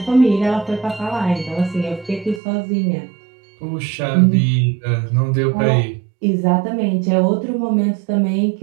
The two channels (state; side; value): drops out; left; at 2.4 s